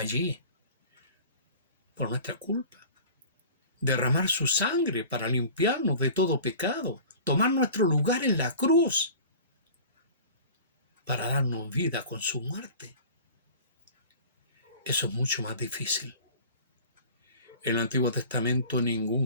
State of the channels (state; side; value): inverted; both; correlation -0.41